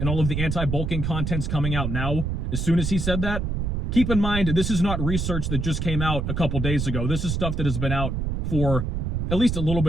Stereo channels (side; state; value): right; noise; rumble, 1 dB below the sound